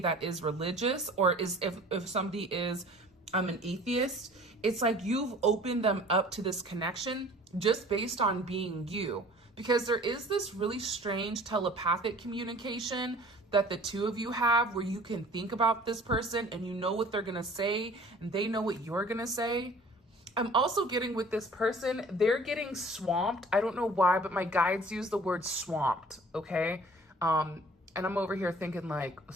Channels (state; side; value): normal; both; correlation 0.48